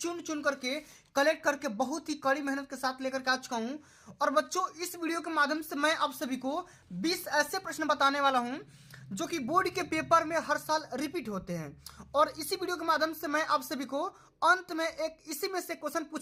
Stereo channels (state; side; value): identical; both; correlation 1.00